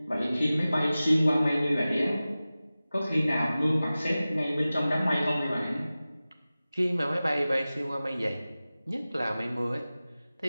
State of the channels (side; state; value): both; inverted; correlation -0.96